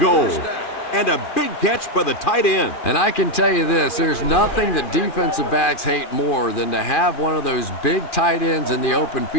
And a big catch by the tight end. And I can tell you this, there's nothing that defensive backs hate more than to have one of those big tight ends in the open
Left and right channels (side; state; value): right; late; 2.3 ms